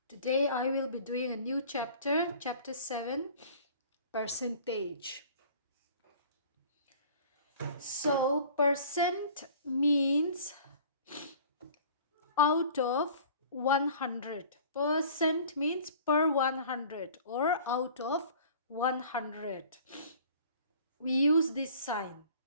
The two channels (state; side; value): inverted; both; correlation -0.47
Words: Today I will be doing a new chapter, chapter 7, percentage. So percent means out of 100. Percent means per 100 or out of 100. We use this sign